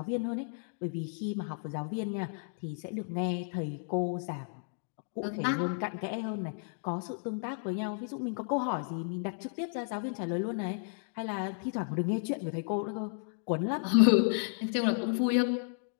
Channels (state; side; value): silent; right; 56 dB below the other